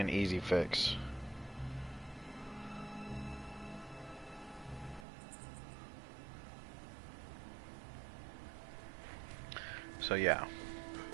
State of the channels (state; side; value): drops out; left; at 5.1 s